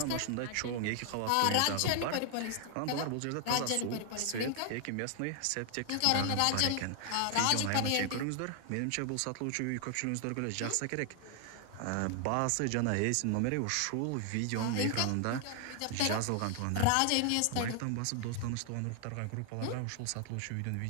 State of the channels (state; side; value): different; both; correlation 0.00